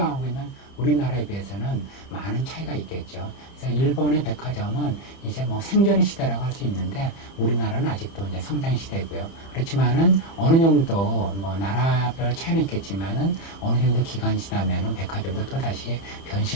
있는 우리나라에 비해서는 많은 차이가 있겠죠. 그래서 일본의 백화점은 이제 뭐 생존의 시대라고 할 수 있는데 우리나라는 아직도 이제 성장 시대고요. 그렇지만은 어느 정도 뭐 나라별 차이는 있겠지만은 어느 정도 기간이 지나면은 백화점도 또다시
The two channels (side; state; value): right; late; 30 ms